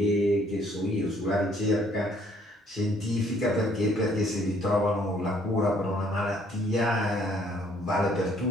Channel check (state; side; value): normal; both; correlation 0.63